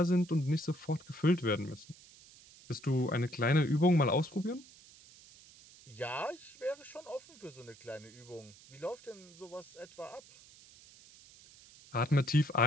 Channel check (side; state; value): right; noise; hiss, 22 dB below the sound